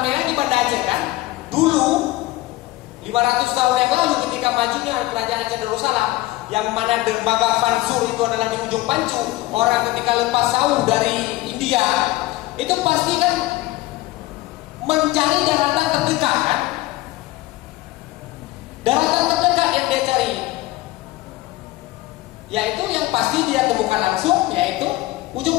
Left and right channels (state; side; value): quieter; right; 18.2 dB